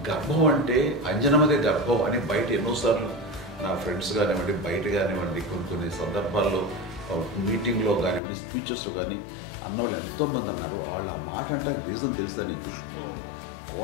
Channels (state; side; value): drops out; right; at 8.2 s